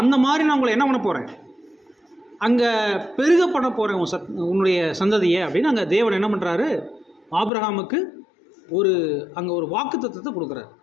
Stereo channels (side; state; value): right; drops out; at 7.5 s